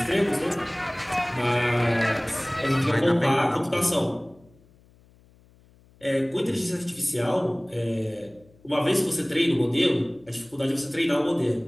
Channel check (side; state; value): left; noise; hum, 29 dB below the sound